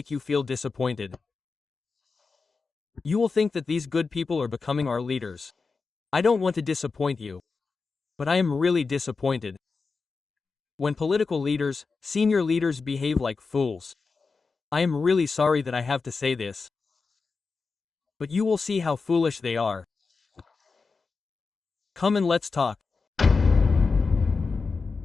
you feel disappointed. You will think that these good people are becoming our leaders. I don't want to disappoint you, but I am really disappointed. When political leaders, senior leaders behave like fools. I am really sorry that I have to say this, but you will see how foolish they are. Come and let's talk.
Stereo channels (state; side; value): quieter; right; 4.5 dB